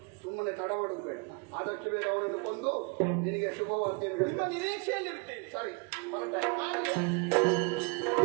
ಸುಮ್ಮನೆ ತಡ ಮಾಡುದು ಬೇಡ. ಆದಷ್ಟು ಬೇಗ ಅವನನ್ನು ಕೊಂದು ನಿನಗೆ ಶುಭವಾರ್ತೆಯನ್ನು ನಿಮ್ಮ ಹೇಳ್ತೇನೆ. ನಿರೀಕ್ಷೆಯಲ್ಲಿ ಇರ್ತೇನೆ. ಸರಿ ಹೊರಟ.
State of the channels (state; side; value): quieter; left; 30.7 dB